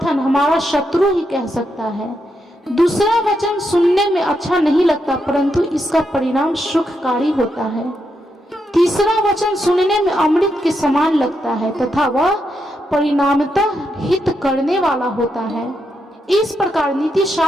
हमारा शत्रु ही कह सकता है। दूसरा वचन सुनने में अच्छा नहीं लगता, परंतु इसका परिणाम सुखकारी होता है। तीसरा वचन सुनने में अमृत के समान लगता है तथा वह परिणामतः हित करने वाला होता है। इस प्रकार नीति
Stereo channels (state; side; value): normal; both; correlation 0.82